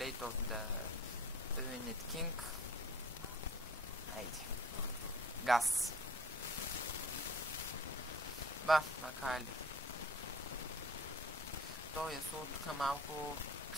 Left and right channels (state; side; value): normal; both; correlation 0.47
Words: of the Ruined King. Айде. Газ. Ба, макар ли. Той е тук малко